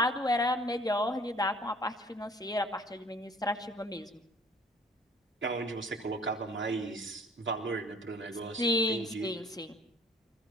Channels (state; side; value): normal; both; correlation 0.53